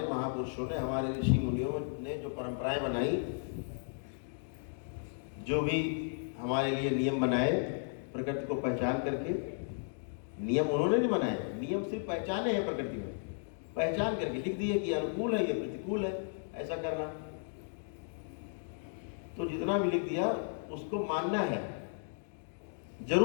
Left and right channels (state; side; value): silent; right; digital silence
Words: महापुरुषों ने, हमारे ऋषि मुनियों ने जो परंपराएं बनाई, जो भी हमारे लिए नियम बनाए प्रकृति को पहचान करके, नियम उन्होंने नहीं बनाए, नियम सिर्फ पहचाने हैं प्रकृति में, पहचान करके लिख दिए कि अनुकूल है, ये प्रतिकूल है, ऐसा करना। तो जितना भी लिख दिया उसको मानना है,